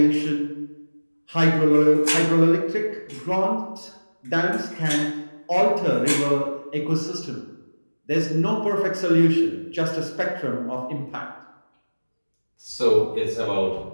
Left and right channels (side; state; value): both; inverted; correlation -1.00